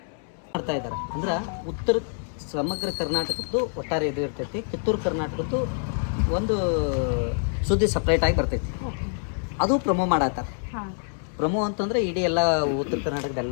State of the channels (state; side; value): silent; right; 61 dB below the other